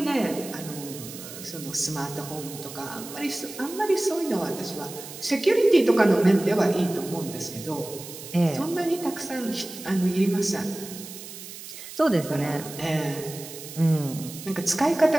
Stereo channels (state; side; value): noise; right; hiss, 13 dB below the sound